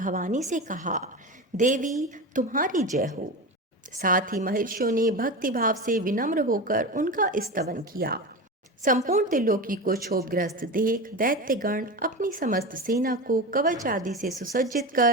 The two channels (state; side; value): normal; both; correlation 0.24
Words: से कहा, देवी तुम्हारी जय हो। साथ ही महर्षियों ने भक्ति भाव से विनम्र होकर उनका स्तवन किया। संपूर्ण त्रिलोकी को क्षोभग्रस्त देख दैत्यगण अपनी समस्त सेना को कवच आदि से सुसज्जित